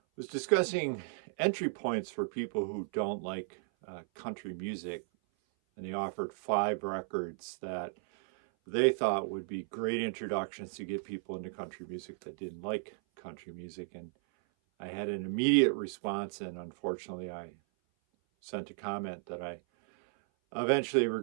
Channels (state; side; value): silent; left; 55 dB below the other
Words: was discussing entry points for people who don't like country music. And they offered 5 records that they thought would be great introductions to get people into country music that didn't like country music. And I had an immediate response, and unfortunately I sent a comment that I eventually